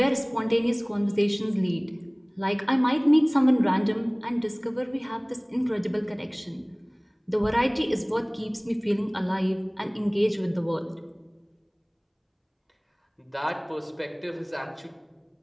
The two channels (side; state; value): both; identical; correlation 1.00